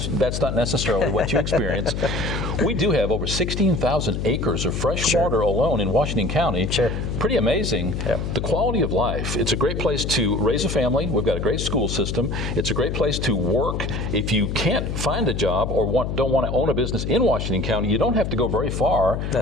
that's not necessarily what you experience. We do have over 16,000 acres of fresh water alone in Washington County. Sure. Pretty amazing. Yeah. The quality of life. It's a great place to raise a family. We've got a great school system. It's a great place to work. If you can't find a job or don't want to own a business in Washington County, you don't have to go very far.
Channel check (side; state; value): left; noise; hum, 3 dB below the sound